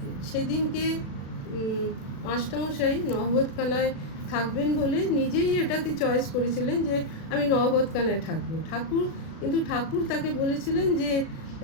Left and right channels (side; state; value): right; late; 36 ms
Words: সেদিনকে মাস্টারমশাই নহবতখানায় থাকবেন বলে নিজেই এটাকে চয়েস করেছিলেন যে আমি নহবতখানায় থাকবো। ঠাকুর তাকে বলেছিলেন যে